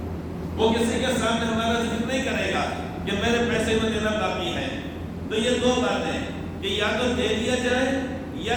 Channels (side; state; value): both; identical; correlation 1.00